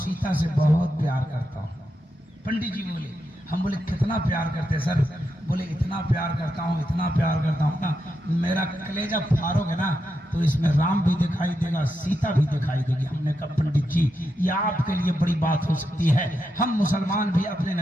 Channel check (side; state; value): both; normal; correlation 0.85